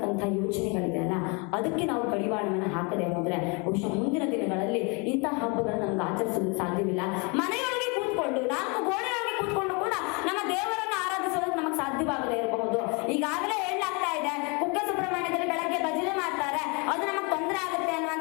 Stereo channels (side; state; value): right; quieter; 31.6 dB